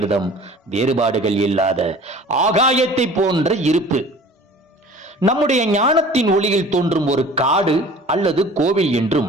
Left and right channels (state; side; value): normal; both; correlation 0.45